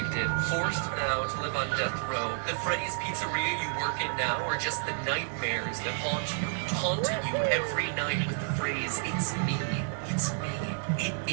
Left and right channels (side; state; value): left; silent; digital silence